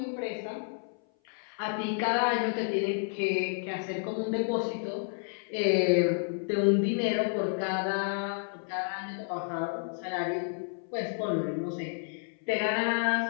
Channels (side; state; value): right; silent; 56 dB below the other